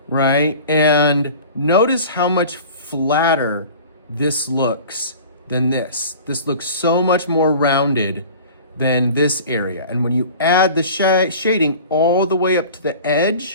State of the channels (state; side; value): inverted; both; correlation -0.41